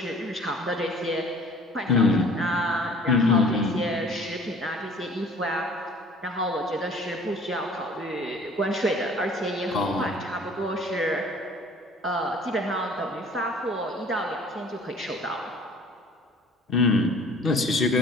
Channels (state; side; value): normal; both; correlation 0.50